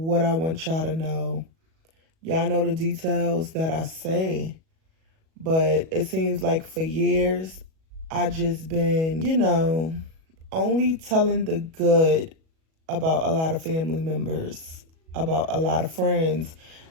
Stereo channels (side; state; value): left; late; 37 ms